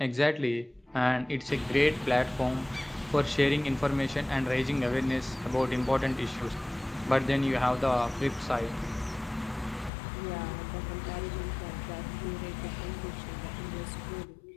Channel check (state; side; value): drops out; right; at 9.9 s